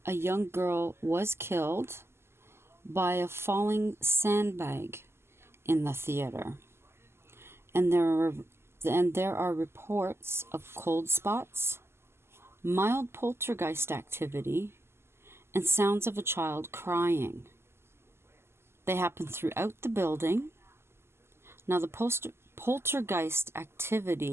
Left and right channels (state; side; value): late; left; 0.12 ms